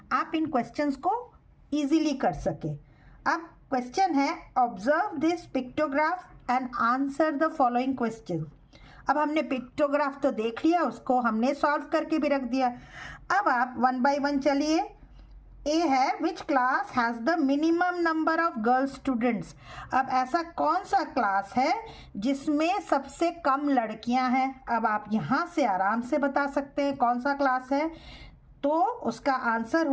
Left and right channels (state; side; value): identical; both; correlation 1.00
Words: आप इन क्वेश्चंस को इजीली कर सके। अब क्वेश्चन है observe this pictograph and answer the following question. अब हमने पिक्टोग्राफ तो देख लिया, उसको हमने सॉल्व करके भी रख दिया। अब आप 1 बाय 1 चलिए। ए है which class has the minimum number of girl students. अब ऐसा कौन सा क्लास है जिसमें सबसे कम लड़कियां हैं। अब आप यहाँ से आराम से बता सकते हैं कौन सा क्लास है। तो उसका आंसर